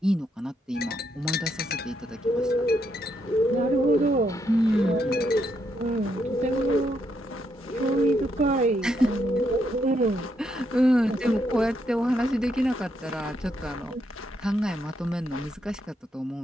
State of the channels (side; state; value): both; normal; correlation 0.77